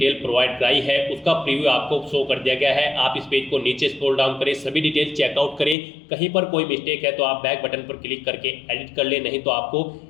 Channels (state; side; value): drops out; right; at 5.8 s